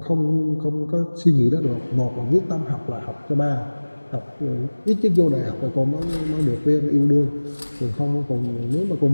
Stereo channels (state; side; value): inverted; both; correlation -1.00